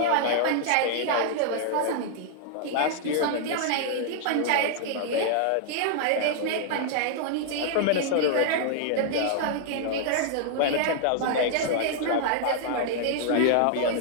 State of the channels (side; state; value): both; different; correlation -0.01